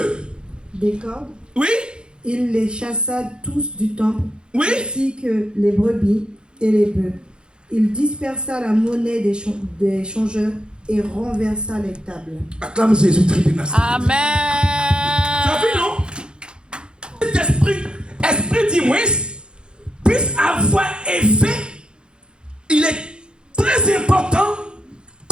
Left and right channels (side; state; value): left; late; 0.050 ms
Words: Des cordes. Oui. Il les chassa tous du temple. Oui. Ainsi que les brebis et les bœufs. Il dispersa la monnaie des changeurs et renversa les tables. Acclame Jésus-Christ de Nazareth. Amen. Tu as vu, non? Cet esprit d'Imoïse puisse avoir effet. Il est très important.